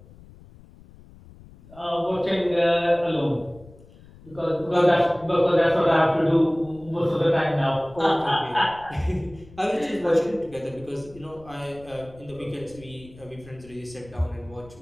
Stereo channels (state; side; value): noise; left; rumble, 22 dB below the sound